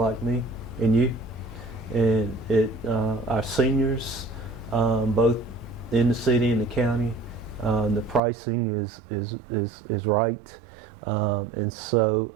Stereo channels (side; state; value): left; drops out; at 8.2 s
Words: me and you. And our seniors, both in the city and the county, the pricing is right, and so